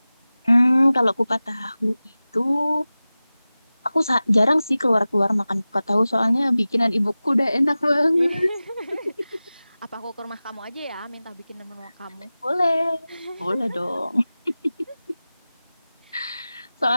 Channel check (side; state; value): both; inverted; correlation -0.97